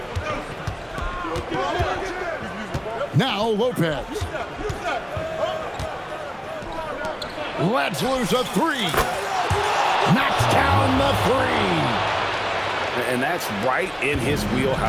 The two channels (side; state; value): both; identical; correlation 1.00